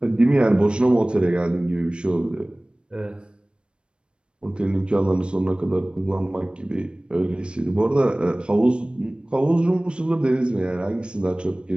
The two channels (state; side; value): late; left; 0.056 ms